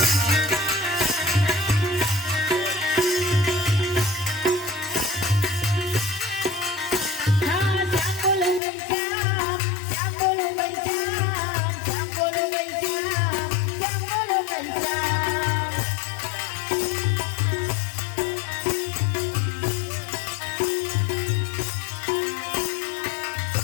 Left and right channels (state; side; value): drops out; right; at 8.6 s